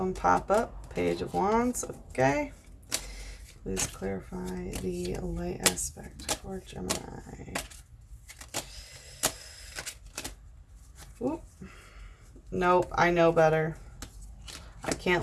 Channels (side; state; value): both; identical; correlation 1.00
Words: pop up. Page of Wands, okay. Please clarify the light aspect for Gemini. Oop. Nope, I know better. I